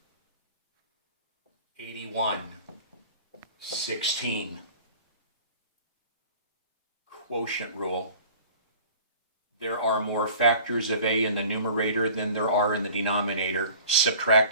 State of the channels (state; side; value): inverted; both; correlation -0.44